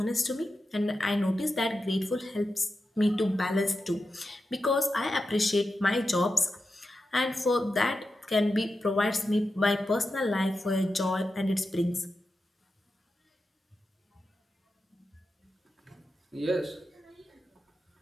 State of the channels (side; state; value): both; normal; correlation 0.90